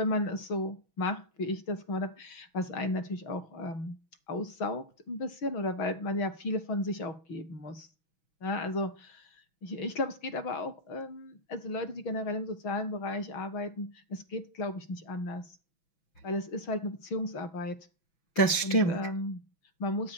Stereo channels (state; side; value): late; right; 6.1 ms